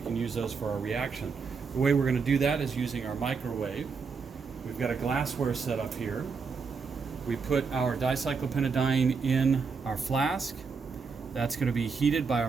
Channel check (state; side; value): quieter; left; 5.1 dB